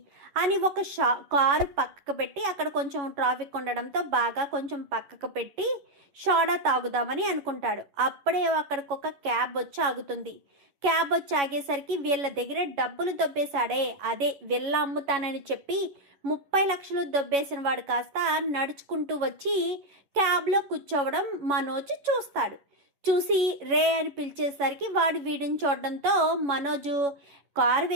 అని ఒక కారు పక్కకు పెట్టి, అక్కడ కొంచెం ట్రాఫిక్ ఉండడంతో బాగా కొంచెం పక్కకు పెట్టి సోడా తాగుదామని అనుకుంటాడు. అప్పుడే అక్కడికి ఒక క్యాబ్ వచ్చి ఆగుతుంది. క్యాబ్ వచ్చి ఆగేసరికి వీళ్ళ దగ్గర డబ్బులు దొబ్బేశాడే, అదే వీళ్ళ అమ్ముతానని చెప్పి 30 లక్షలు దొబ్బేసిన వాడు కాస్త నడుచుకుంటూ వచ్చి క్యాబ్లో కూర్చోవడం మనోజ్ చూస్తాడు. చూసి రే అని పిలిచేసరికి వాడు వీడిని చూడడంతో మనోజు కారు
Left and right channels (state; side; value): late; left; 11 ms